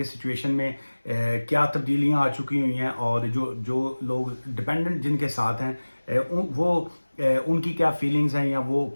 सिचुएशन में क्या तब्दीलियाँ आ चुकी हुई हैं, और जो लोग डिपेंडेंट जिनके साथ हैं वो उनकी क्या फीलिंग्स हैं या वो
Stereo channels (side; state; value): both; inverted; correlation -1.00